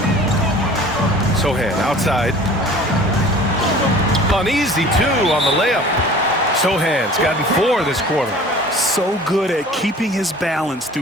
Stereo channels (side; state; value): both; normal; correlation 0.45